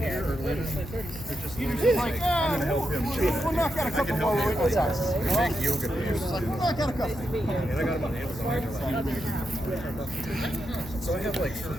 are linen. They're just linen. I'm gonna help him. We'll knock out a couple more with Wiggles house. Big yoga pants. We'll knock out a couple. And I got them on Amazon. So I have like 3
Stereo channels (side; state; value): left; noise; hum, 13 dB below the sound